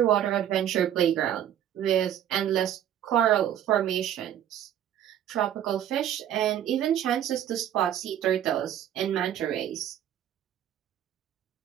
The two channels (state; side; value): quieter; left; 10.7 dB